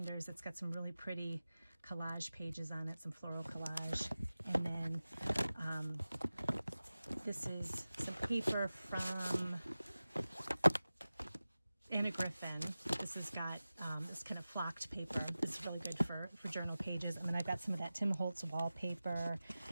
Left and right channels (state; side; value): inverted; both; correlation -0.96